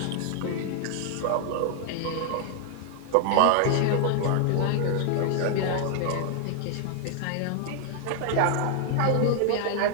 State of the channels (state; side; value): different; both; correlation -0.01